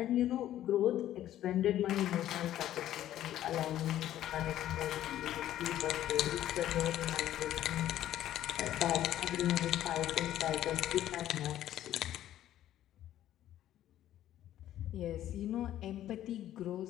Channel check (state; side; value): quieter; right; 12.5 dB